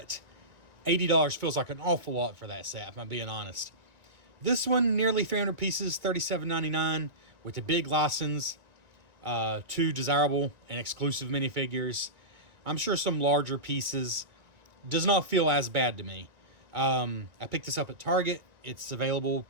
$80 feels like an awful lot for that set, if I'm being honest. This one, nearly 300 pieces, $37.99, with a big license, two desirable and exclusive minifigures. I'm sure some larger pieces. Does not feel as bad to me. I picked this up at Target. It's available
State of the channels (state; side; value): late; left; 1.9 ms